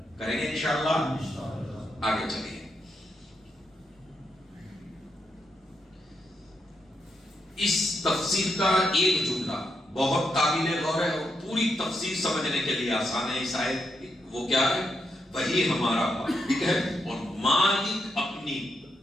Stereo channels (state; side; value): normal; both; correlation 0.82